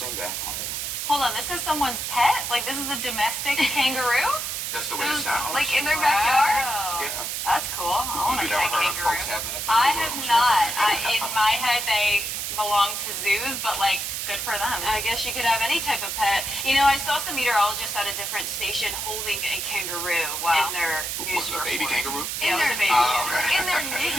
back home. Hold on, this is someone's pet? Like, this is a domestic kangaroo? That's the way it sounds. Like, in their backyard? Yeah. That's cool. I want a You pet never heard kangaroo. of folks having a kangaroo? I have not. In my head, they belong to zoos, but, like, good for them. I guess you could have any type of pet. You know, I saw some meteorologists at a different station holding a kangaroo in their news Was it a baby report. kangaroo? Yeah, it was a baby. okay. In their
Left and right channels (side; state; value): right; noise; hiss, 3 dB below the sound